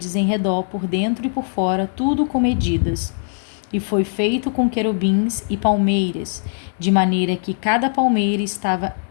em redor, por dentro e por fora, tudo com medidas. E foi feito com querubins e palmeiras, de maneira que cada palmeira estava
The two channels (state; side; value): silent; right; 66 dB below the other